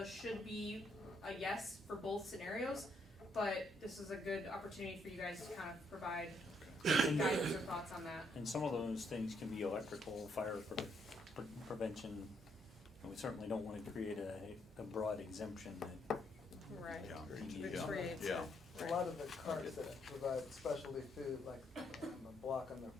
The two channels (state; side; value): normal; both; correlation 0.73